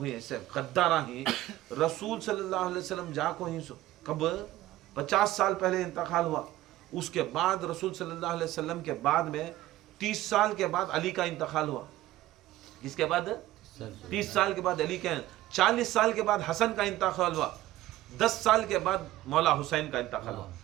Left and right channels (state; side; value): quieter; left; 15.6 dB